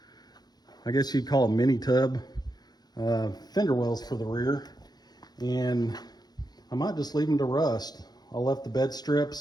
I guess you'd call them mini tub fender wells for the rear. And I might just leave them to rust. I left the bed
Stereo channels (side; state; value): right; late; 0.19 ms